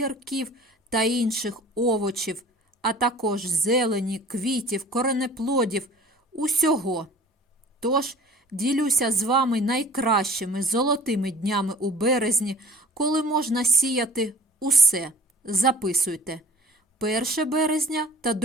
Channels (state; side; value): normal; both; correlation 0.46